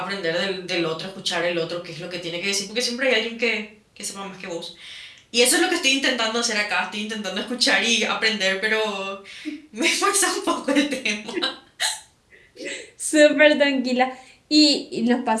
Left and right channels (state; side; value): identical; both; correlation 1.00